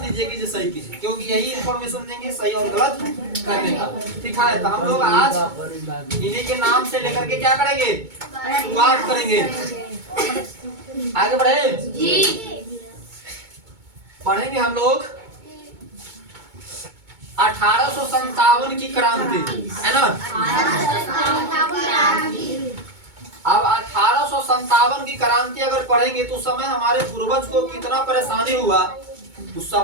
कि सही कीजिए, क्योंकि यही इन्फॉर्मेशन देंगे सही और गलत करने का। ठीक है, तो हम लोग आज इन्हीं के नाम से लेकर के क्या करेंगे, शुरुआत करेंगे। आगे बढ़े जी। पढ़ेंगे हम लोग 1857 की क्रांति, है ना। अब 1857 की क्रांति अगर पढ़ेंगे तो उस समय हमारे पूर्वज को कितना परेशानी हुआ, उस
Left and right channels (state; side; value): late; left; 2.2 ms